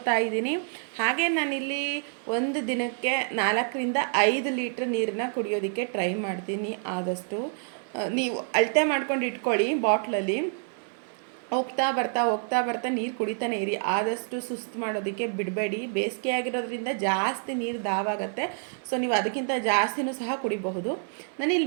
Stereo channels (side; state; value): left; silent; 60 dB below the other